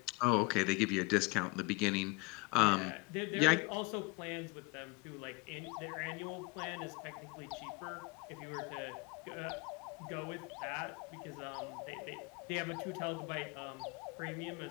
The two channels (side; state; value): right; quieter; 27.5 dB